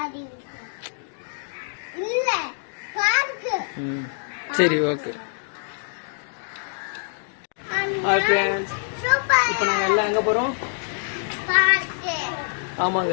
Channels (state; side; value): silent; right; digital silence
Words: சரி, ஓகே. ஹாய் ஃப்ரெண்ட்ஸ், இப்போ நாங்க எல்லாம் எங்க போறோம்? ஆமாங்க,